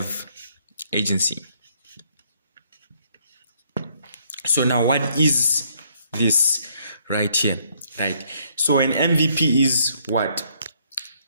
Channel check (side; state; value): both; inverted; correlation -0.68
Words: agency. So now what is this right here, right? So an MVP is what?